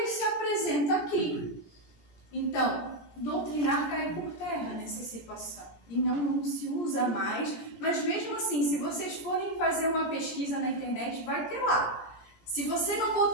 se apresenta aqui. Então, doutrinar cai por terra nessa situação e não se usa mais, mas mesmo assim, se vocês forem fazer uma pesquisa na internet, vai ter lá. Se você não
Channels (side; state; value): right; late; 18 ms